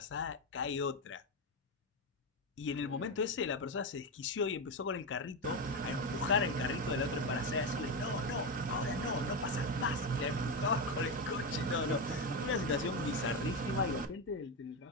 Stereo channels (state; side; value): normal; both; correlation 0.12